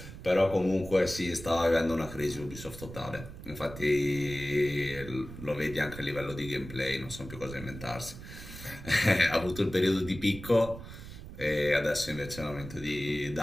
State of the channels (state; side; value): noise; right; rumble, 13 dB below the sound